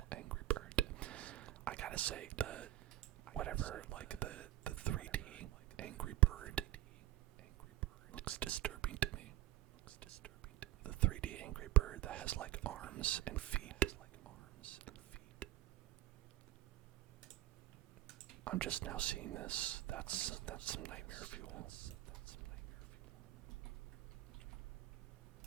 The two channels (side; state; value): left; quieter; 15.2 dB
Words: Angry Bird. I gotta say, whatever, like the 3D Angry Bird looks disturbing to me. The 3D Angry Bird that has like arms and feet. I'm just now seeing this. That's some nightmare fuel.